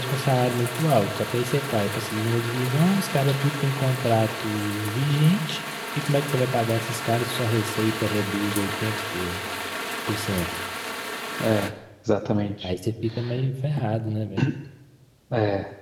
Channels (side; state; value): both; identical; correlation 1.00